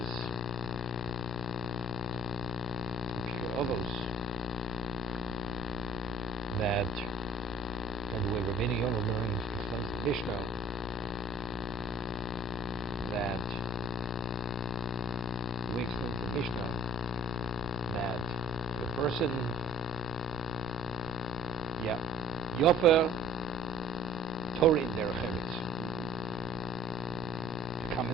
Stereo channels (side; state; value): both; normal; correlation 0.52